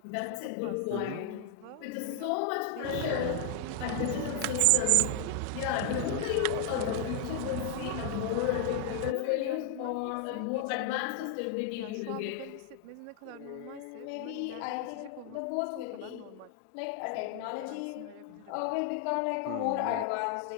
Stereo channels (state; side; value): different; both; correlation 0.00